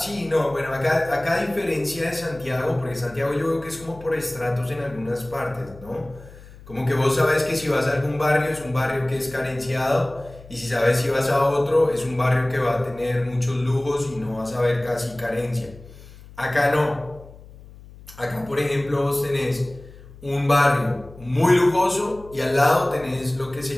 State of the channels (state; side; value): noise; left; hum, 19 dB below the sound